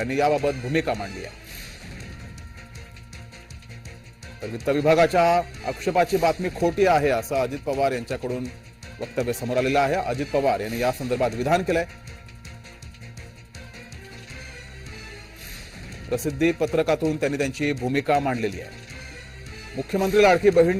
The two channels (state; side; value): identical; both; correlation 1.00